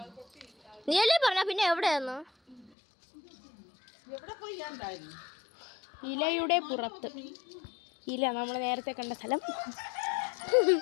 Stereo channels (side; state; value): right; drops out; at 2.7 s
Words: നീയല്ലേ പറഞ്ഞ പിന്നെ എവിടെയായിരുന്നു? ഇലയുടെ പുറത്ത്. ഇല നമ്മൾ നേരത്തെ കണ്ട സ്ഥലം.